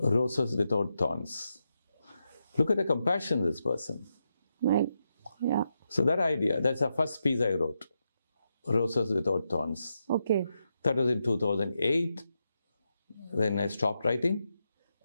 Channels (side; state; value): both; inverted; correlation -0.85